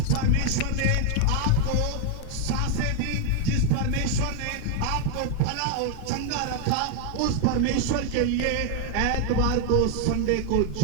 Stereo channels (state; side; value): different; both; correlation 0.01